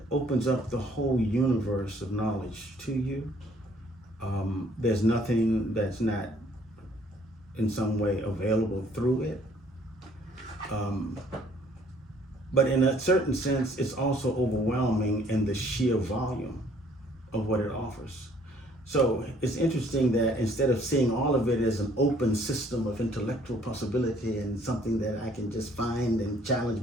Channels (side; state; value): both; normal; correlation 0.61